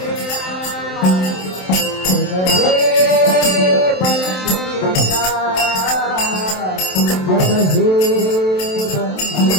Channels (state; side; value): late; right; 27 ms